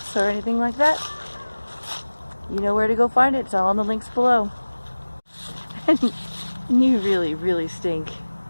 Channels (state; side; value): inverted; both; correlation -1.00